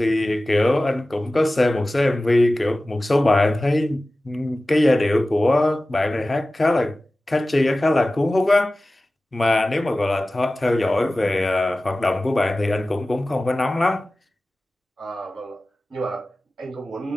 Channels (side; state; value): both; normal; correlation 0.96